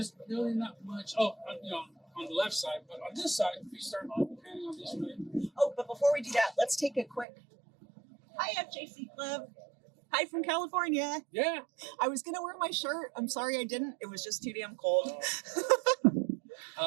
really not much. Oh, on the left side, but on this side, if you start panning on this way. Oh, but before we do that, let's take a quick. Hi, FJC Club. Hi from California. Yeah. I was gonna wear my shirt. I'm sorry I didn't. It was just too damn cold.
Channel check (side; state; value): left; drops out; at 7.2 s